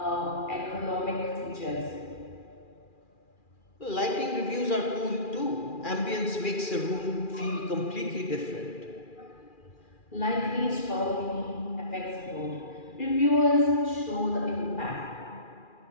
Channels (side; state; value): right; late; 2.4 ms